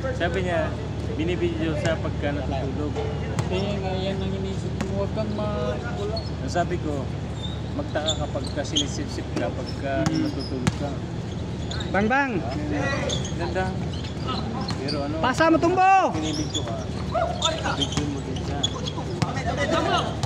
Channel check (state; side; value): identical; both; correlation 1.00